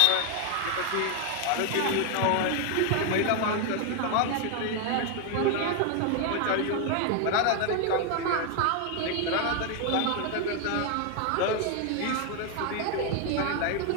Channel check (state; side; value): different; both; correlation 0.01